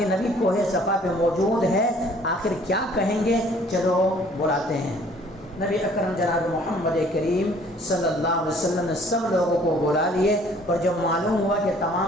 نبی کوہ صفا پہ موجود ہے، آخر کیا کہیں گے، چلو بلاتے ہیں۔ نبی اکرم جناب محمد کریم صلی اللہ علیہ وسلم نے سب لوگوں کو بلا لیے، اور جب معلوم ہوا کہ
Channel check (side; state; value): both; normal; correlation 0.57